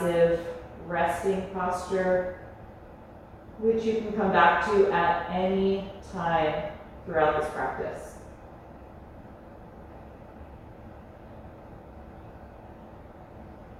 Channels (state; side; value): identical; both; correlation 1.00